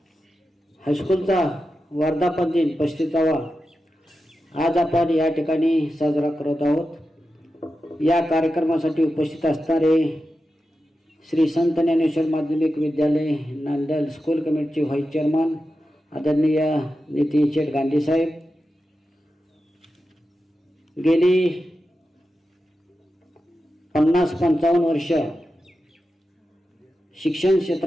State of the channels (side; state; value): both; normal; correlation 0.91